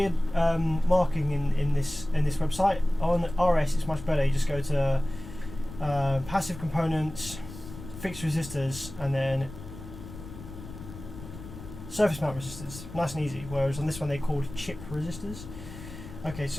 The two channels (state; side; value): noise; left; rumble, 13 dB below the sound